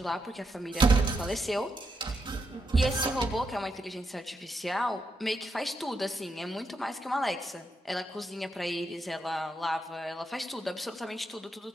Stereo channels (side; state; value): both; normal; correlation 0.82